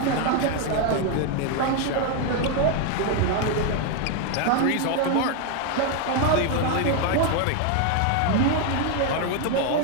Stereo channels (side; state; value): both; different; correlation 0.01